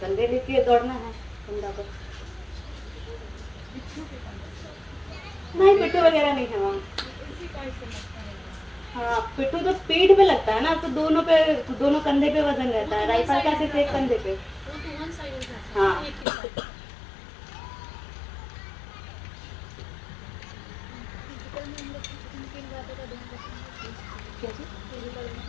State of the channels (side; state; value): right; drops out; at 16.2 s